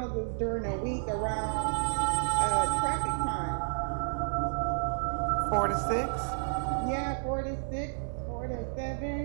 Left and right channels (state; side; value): silent; left; 57 dB below the other